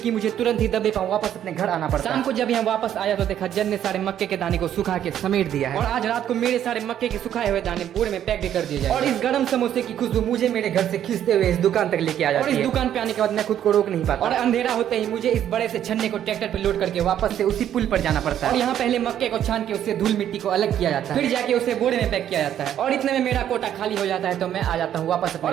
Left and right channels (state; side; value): quieter; left; 10.5 dB